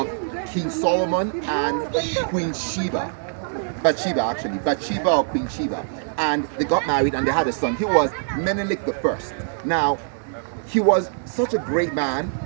King Solomon and Queen Sheba. Bathsheba or Queen Sheba. And they got married and they had a son. He was Menelik I. Now, he was such a great man,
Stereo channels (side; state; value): left; silent; digital silence